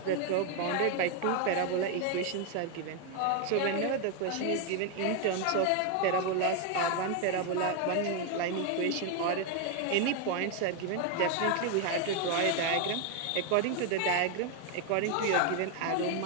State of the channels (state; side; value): different; both; correlation 0.01